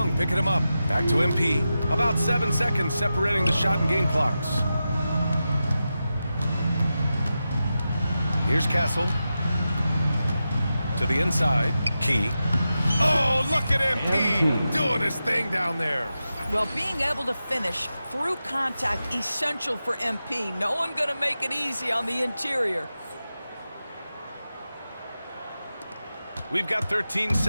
picking him up. Back to MP. About 7 seconds separating the shot and game clocks. Here's Castle. To the inside. Key. Oh, look at MP doing his thing down there. Well, being able to finish through contact, essential for MP. No one going to make it easy on the interior. We've got 13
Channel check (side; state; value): both; inverted; correlation -0.91